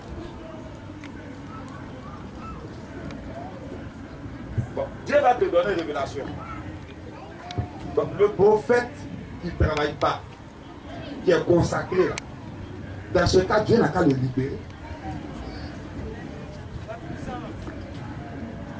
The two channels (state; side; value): identical; both; correlation 1.00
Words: Bon, Dieu va te donner une révélation. Donc, le prophète qui ne travaille pas, qui est consacré là, dans ce cas, Dieu n'a qu'à le libérer.